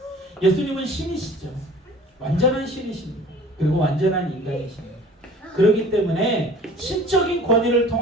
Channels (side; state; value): both; normal; correlation 0.47